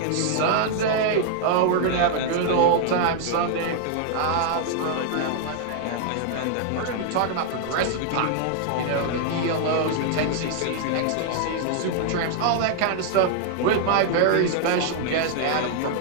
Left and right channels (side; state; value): both; different; correlation 0.00